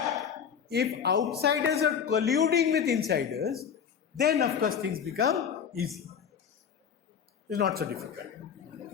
if outsiders are colluding with insiders, then of course things become easy. It's not so difficult.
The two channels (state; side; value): quieter; right; 7.4 dB